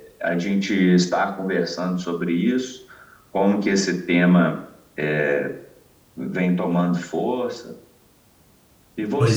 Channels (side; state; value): both; identical; correlation 1.00